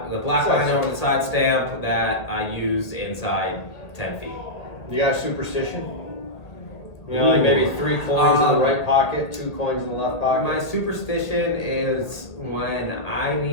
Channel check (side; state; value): right; late; 1.5 ms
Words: Side line stamp. over the side stamp that I use inside 10 feet. You got a superstition? You know, like maybe 3 coins in the right pocket, 2 coins in the left pocket. My superstition is when I